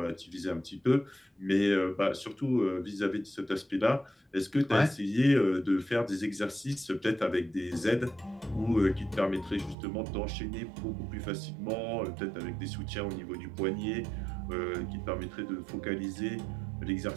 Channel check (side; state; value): left; drops out; at 9.8 s